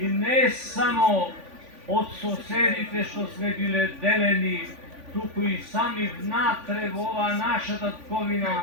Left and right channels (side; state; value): left; late; 3.5 ms